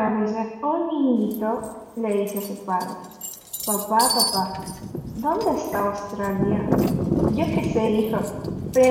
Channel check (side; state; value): both; identical; correlation 1.00